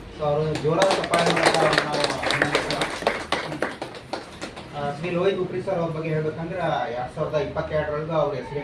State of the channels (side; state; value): both; identical; correlation 1.00